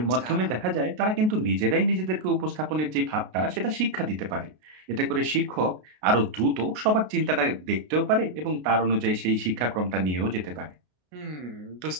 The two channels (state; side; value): late; left; 33 ms